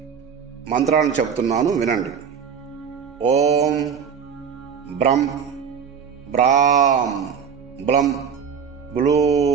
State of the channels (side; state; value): left; quieter; 7.1 dB